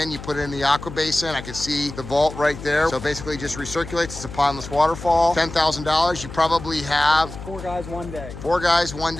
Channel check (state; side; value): noise; left; hum, 12 dB below the sound